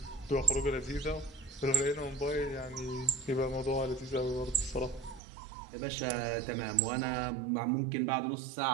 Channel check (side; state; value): left; drops out; at 5.2 s